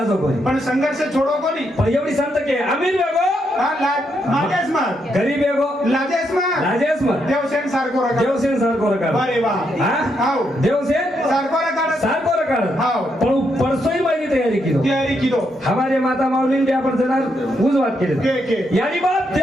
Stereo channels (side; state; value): both; normal; correlation 0.79